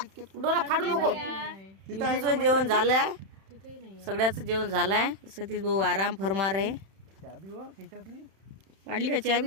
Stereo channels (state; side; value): late; left; 31 ms